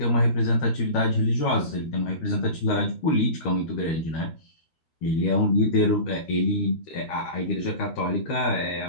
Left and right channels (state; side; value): late; right; 13 ms